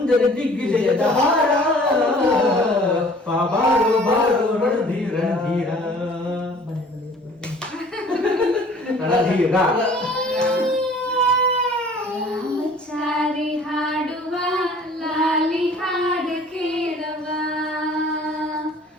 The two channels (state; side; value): normal; both; correlation 0.51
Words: ದಿಗ್ವಿಜಯದ ಹಾರ ಬಾರೋ ಬಾರೋ ರಣಧೀರ ಧೀರ ರಣಧೀರ ರಾಮಚಾರಿ ಹಾಡುವ ಲಾಲಿ ಹಾಡು ಕೇಳುವ